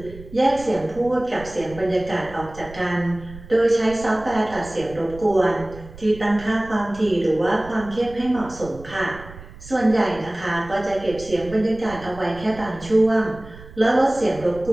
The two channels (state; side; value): noise; right; rumble, 17 dB below the sound